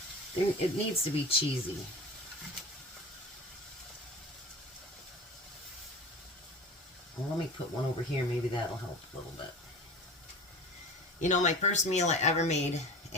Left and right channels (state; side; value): normal; both; correlation 0.34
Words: it needs to be cheesy. Well, let me put one over here. Maybe that'll help a little bit. You know, my first meal I ever made